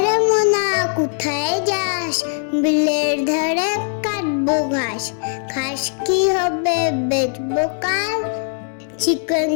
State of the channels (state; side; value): silent; right; 65 dB below the other